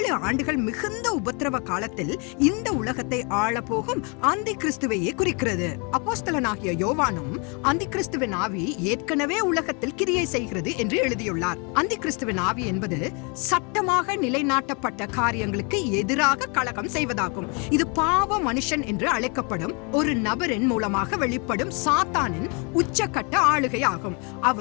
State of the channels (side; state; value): right; quieter; 33.5 dB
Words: ஆண்டுகள் மிகுந்த உபத்திரவ காலத்தில் இந்த உலகத்தை ஆளப்போகும் அந்தி கிறிஸ்துவையே குறிக்கிறது. அப்போஸ்தலனாகிய யோவானும் அந்தி கிறிஸ்துவின் ஆவி ஏற்கனவே உலகத்தில் கிரியை செய்கிறது என்று எழுதியுள்ளார். அந்தி கிறிஸ்துவின் ஆவி என்பது சட்டமாக நிலைநாட்டப்பட்ட காரியங்களுக்கு எதிராக கலகம் செய்வதாகும். இது பாவ மனுஷன் என்று அழைக்கப்படும் ஒரு நபரின் மூலமாக வெளிப்படும் சாத்தானின் உச்சக்கட்ட ஆளுகையாகும்.